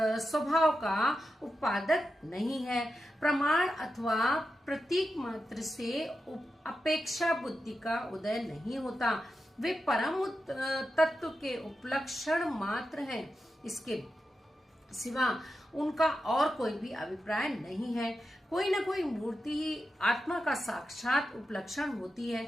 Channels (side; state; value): both; normal; correlation 0.89